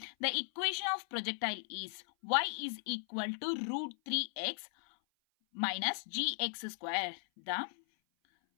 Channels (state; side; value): silent; right; 53 dB below the other